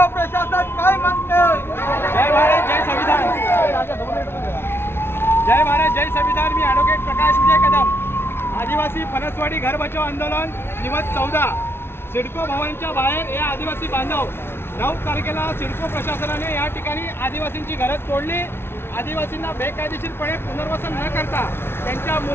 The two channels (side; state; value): right; late; 0.11 ms